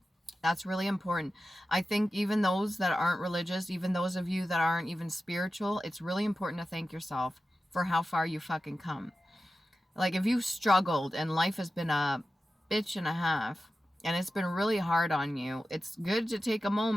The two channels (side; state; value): both; normal; correlation 0.93